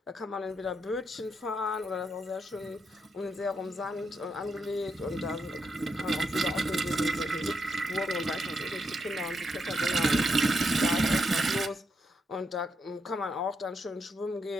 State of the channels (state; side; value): normal; both; correlation 0.80